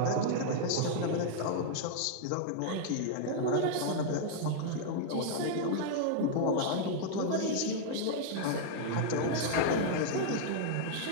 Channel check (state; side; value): different; both; correlation -0.01